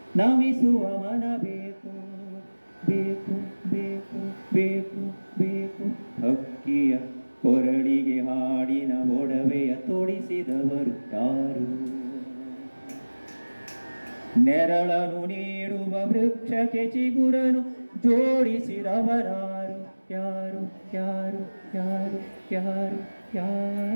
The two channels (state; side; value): inverted; both; correlation -1.00